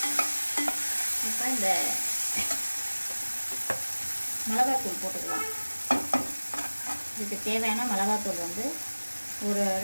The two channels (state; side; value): inverted; both; correlation -1.00